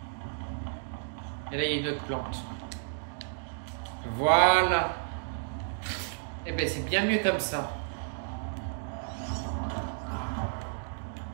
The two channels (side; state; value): left; silent; digital silence